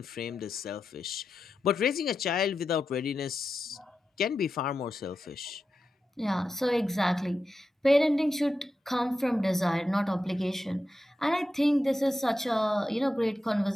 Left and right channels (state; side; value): normal; both; correlation 0.89